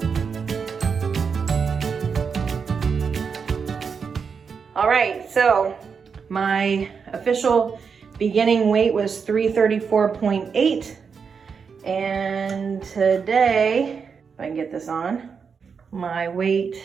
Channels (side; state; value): left; quieter; 5.9 dB